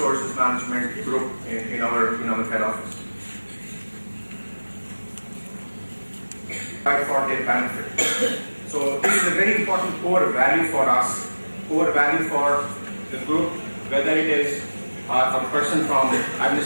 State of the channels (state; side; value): inverted; both; correlation -1.00